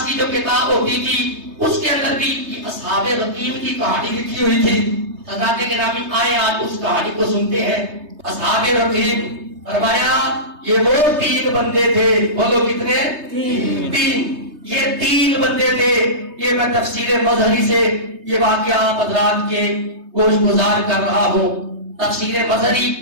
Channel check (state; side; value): late; left; 3.3 ms